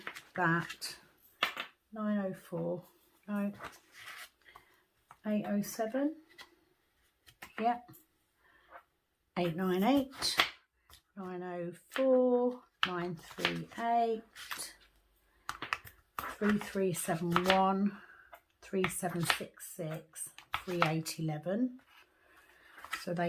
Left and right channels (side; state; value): both; identical; correlation 1.00